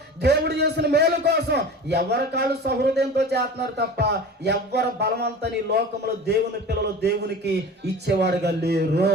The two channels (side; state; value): both; normal; correlation 0.36